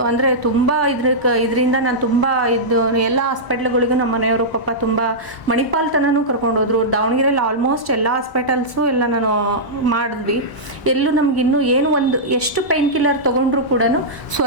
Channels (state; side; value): late; right; 1.0 ms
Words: ಅಂದರೆ ತುಂಬ ಇದರಿಂದ ನಾನು ತುಂಬ ಇದು ಎಲ್ಲ ಹಾಸ್ಪಿಟ್ಲ್ಗಳಿಗೂ ನಮ್ಮ ಮನೆಯವರು ಪಾಪ ತುಂಬ ಮಣಿಪಾಲ್ ತನೂ ಕರ್ಕೊಂಡೋದ್ರು. ದಾವಣಗೆರೆಯಲ್ಲಿ ಆಲ್ಮೋಸ್ಟ್ ಎಲ್ಲ ಹಾಸ್ಪಿಟಲ್ಸು ಎಲ್ಲ ನಾನು ಮಾಡಿದ್ವಿ. ಎಲ್ಲೂ ನಮಗಿನ್ನೂ ಏನು ಒಂದು ಎಷ್ಟು ಪೈನ್ ಕಿಲ್ಲರ್ ತೊಗೊಂಡ್ರು ಕೂಡ